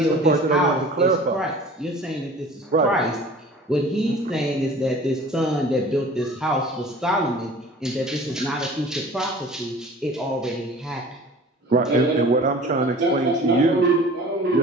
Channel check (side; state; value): both; normal; correlation 0.44